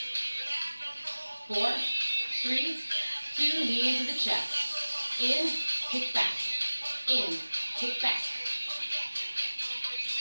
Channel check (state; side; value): inverted; both; correlation -1.00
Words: 4, 3, 2, knee into the chest. In, kick back. In, kick back.